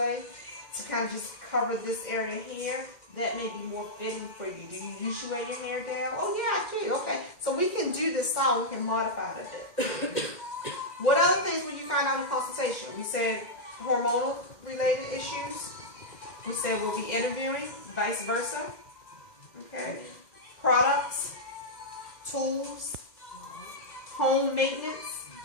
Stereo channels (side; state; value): right; late; 2.1 ms